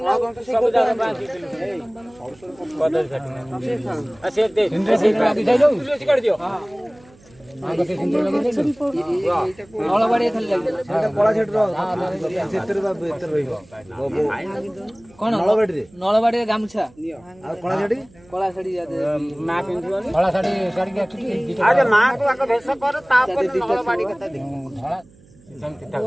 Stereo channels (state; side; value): noise; right; hum, 27 dB below the sound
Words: ନା ସବୁ ଜାଗା ବାନ୍ଧିଥିଲୁ କଦଳୀ ଛାଟୁ ଆଉ ସେ ଦେ କାଢି ଦିଅ ନଳବାଡ଼ି ଖାଲି ଲାଗିବ କଳା ଛାଟୁର ସେଥିରେ ବା ଭିତରେ ରହିବ କଣ ନଳବାଡ଼ିରେ ଗାମୁଛା ଆଉ କଳା ଶାଢ଼ୀ ମା ପିନ୍ଧିବନି କଳା ଶାଢ଼ୀ ଶାଢ଼ୀ ଆରେ ମାକୁ ଆଗ ଭେଷ କର ତାପରେ ନଳବାଡ଼ି କଥା ଦେଖ